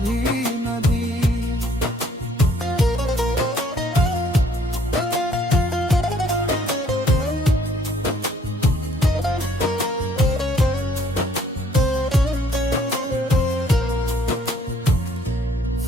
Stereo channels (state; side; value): normal; both; correlation 0.61